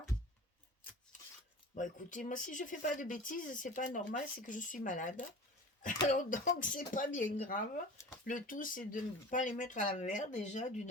Bon, écoutez, moi, si je fais pas de bêtises, c'est pas normal, c'est que je suis malade. Alors, donc, c'est pas bien grave. Le tout, c'est de ne pas les mettre à l'envers, déjà,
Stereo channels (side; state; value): both; normal; correlation 0.38